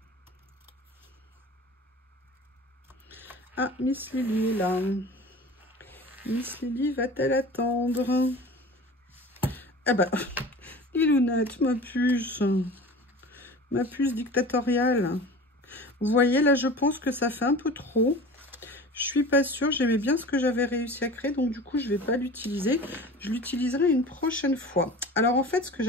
Ah, Miss Lily là. Miss Lily va-t-elle attendre? Ah bah, Lilounette, ma puce dictatoriale. Vous voyez, là, je pense que ça fait un peu trop. Je suis pas sûre, j'aimais bien ce que j'avais réussi à créer, donc du coup, je vais pas l'utiliser. Je l'utiliserai une prochaine fois. Alors, en fait, ce que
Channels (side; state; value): both; normal; correlation 0.38